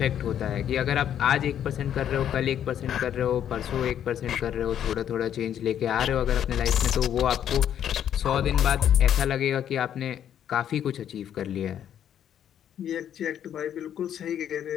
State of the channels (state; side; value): quieter; right; 9.9 dB